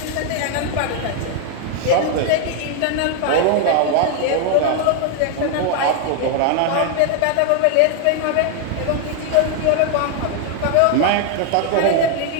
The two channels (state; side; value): different; both; correlation 0.00